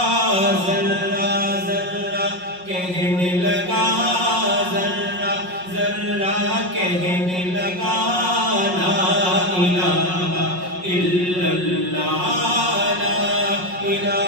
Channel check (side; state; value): left; late; 5.5 ms